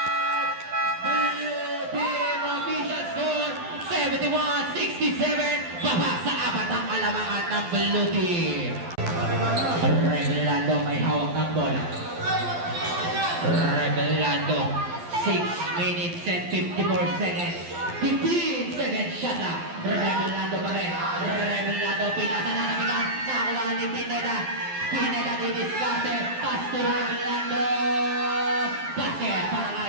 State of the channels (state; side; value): late; left; 12 ms